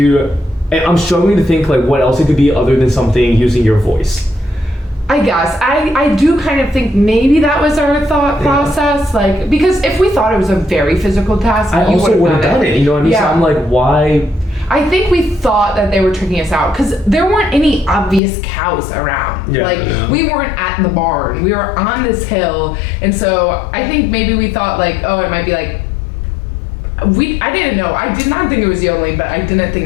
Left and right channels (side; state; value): right; drops out; at 18.2 s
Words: struggling to think like what else it could be other than something using your voice. I guess. I do kind of think maybe that was our thought process. Like, because if we thought it was a very physical task, I also would have done it. You know what I mean? Yeah. So I'm like, why? I think we thought that they were tricking us out because there weren't any obvious cows around. We weren't at the barn. We were on this hill. And so I think maybe we thought like, oh, it might be like, I didn't know. I did not think it was yodeling, but I didn't think